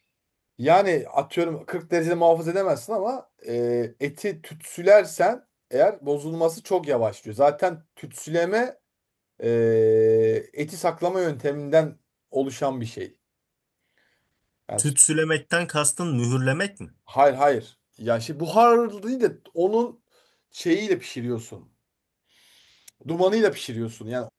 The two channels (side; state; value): both; identical; correlation 1.00